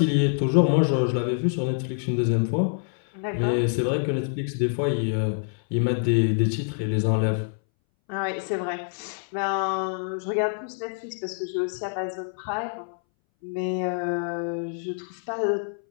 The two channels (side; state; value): right; silent; 60 dB below the other